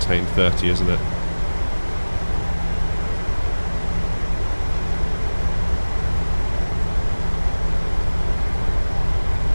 30, isn't it?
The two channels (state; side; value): inverted; both; correlation -1.00